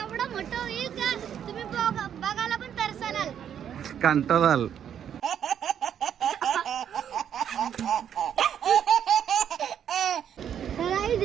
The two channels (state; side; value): quieter; left; 9.1 dB